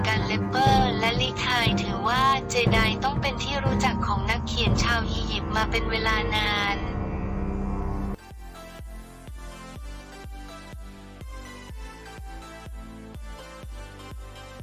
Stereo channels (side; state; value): both; identical; correlation 1.00